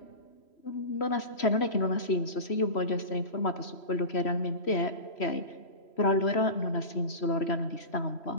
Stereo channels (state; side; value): late; right; 3.0 ms